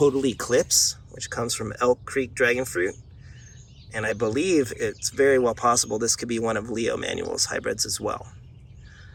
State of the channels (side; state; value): both; identical; correlation 1.00